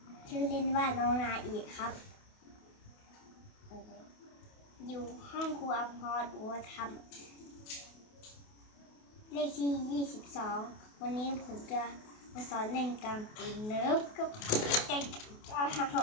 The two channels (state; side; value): late; right; 28 ms